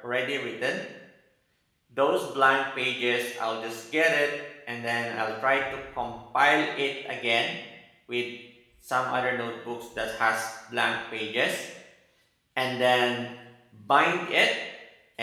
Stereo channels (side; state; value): both; identical; correlation 1.00